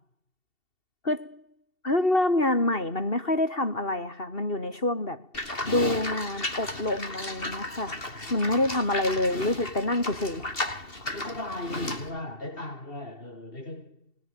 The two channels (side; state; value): right; late; 2.7 ms